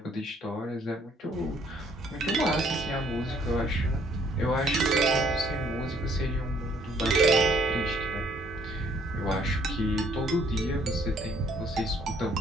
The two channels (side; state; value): both; normal; correlation 0.63